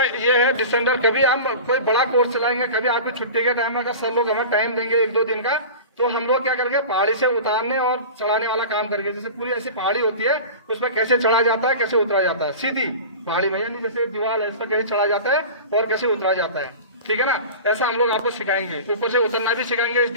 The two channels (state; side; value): inverted; both; correlation -0.34